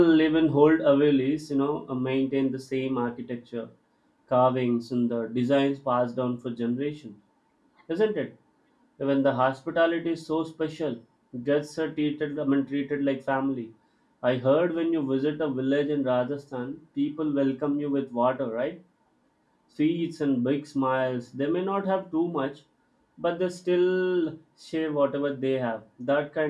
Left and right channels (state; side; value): identical; both; correlation 1.00